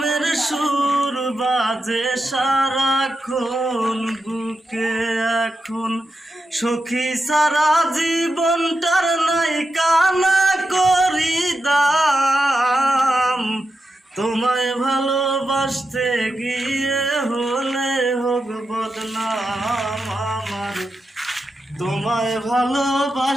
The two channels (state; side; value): normal; both; correlation 0.88